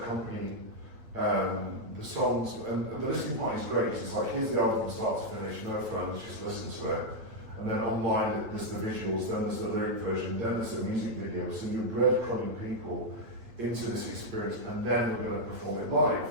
accompany the songs, and the listening party is great. It's like, here's the album from start to finish, no phones, just listen to it. And then online, there's the visuals, then there's the lyric version, then there's the music video. So you're breadcrumbing people into this experience, and then we're going to perform it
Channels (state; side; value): late; left; 8.9 ms